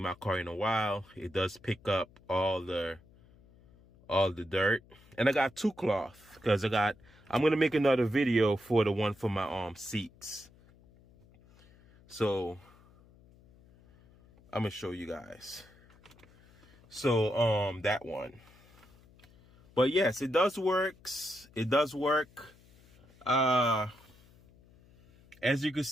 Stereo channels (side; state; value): left; noise; hum, 27 dB below the sound